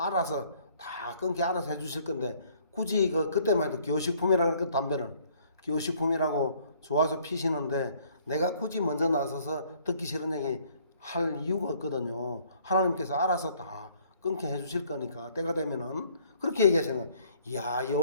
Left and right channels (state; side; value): inverted; both; correlation -0.61